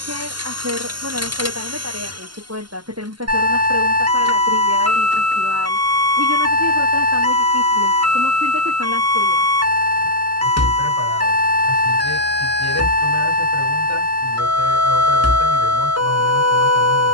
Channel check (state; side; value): late; left; 0.71 ms